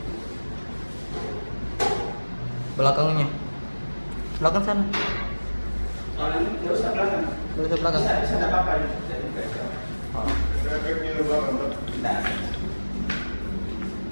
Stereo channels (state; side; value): inverted; both; correlation -1.00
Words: Belakangnya. Belakang sana. Nggak usah belakang. Nggak usah belakang. Bisa ada apa-apa. Nah.